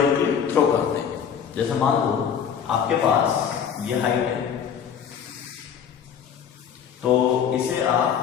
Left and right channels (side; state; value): right; quieter; 7.9 dB